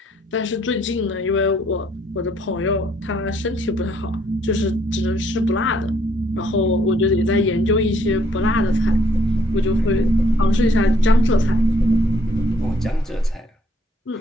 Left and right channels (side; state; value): both; normal; correlation 0.66